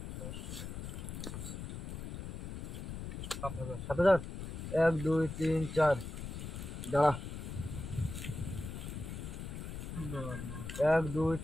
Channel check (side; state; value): left; noise; rumble, 7 dB below the sound